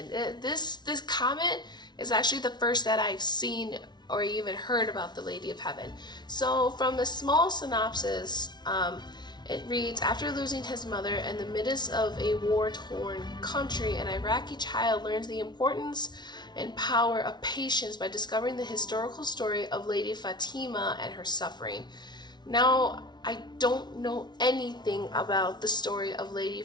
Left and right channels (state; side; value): late; right; 0.20 ms